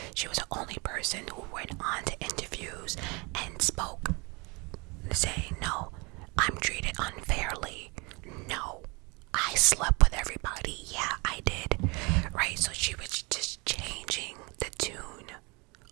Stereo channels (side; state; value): left; quieter; 28.3 dB